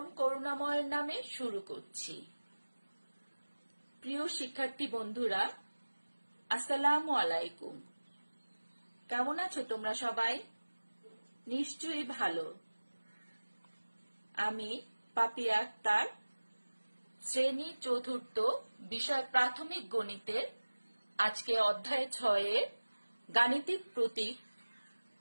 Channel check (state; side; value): inverted; both; correlation -1.00